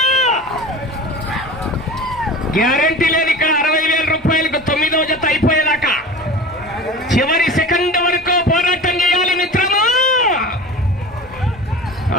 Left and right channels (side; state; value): both; normal; correlation 0.35